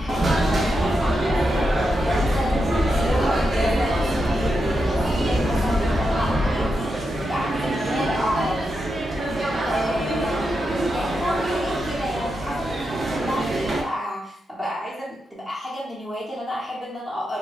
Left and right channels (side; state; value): both; normal; correlation 0.86